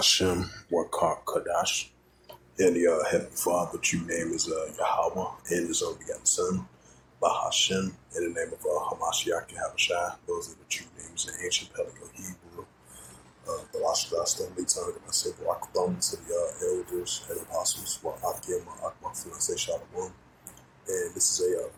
Wakar Kadash, and the Heavenly Father, which you name is Yahweh, and his only begotten Son, Bahashem, in the name of Hamashiach Yahweh Shai. Those are the true names in ancient Paleo Hebrew. The last only tongue, and I say, Raktham to the elders and apostles, Wa'akim, Ma'akma, Fiance Shalom. And this is a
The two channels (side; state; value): both; identical; correlation 1.00